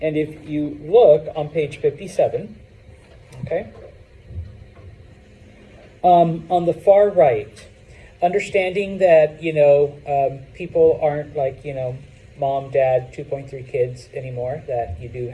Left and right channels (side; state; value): both; identical; correlation 1.00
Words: if you look on page 57, okay? On the far right, understanding that, people aren't mom, dad, 2.3 kids anymore, that you do